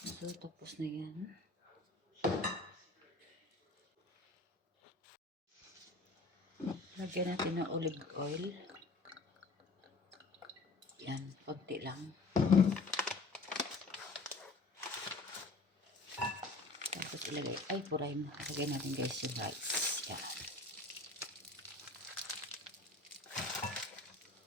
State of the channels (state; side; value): quieter; right; 3.3 dB